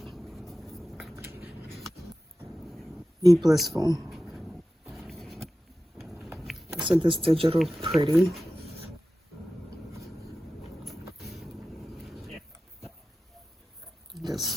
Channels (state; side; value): normal; both; correlation 0.94